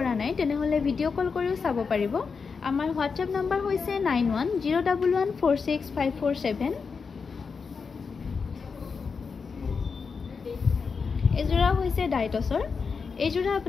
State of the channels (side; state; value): right; quieter; 5.3 dB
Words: নাই তেনেহ'লে ভিডিঅ' কল কৰিও চাব পাৰিব। আমাৰ হোৱাটছএপ নম্বৰ হৈছে 9101146547। এইযোৰা হৈছে ডাই টচৰ। এইযোৰা